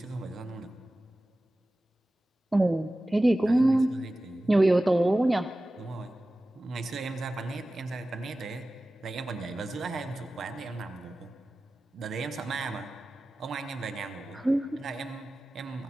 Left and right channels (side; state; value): both; normal; correlation 0.96